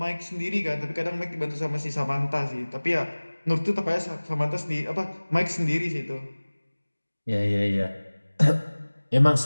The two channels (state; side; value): inverted; both; correlation -1.00